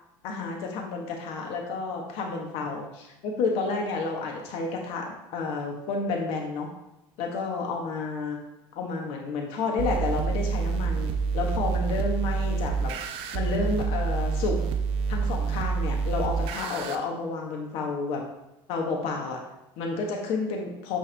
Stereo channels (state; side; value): normal; both; correlation 0.51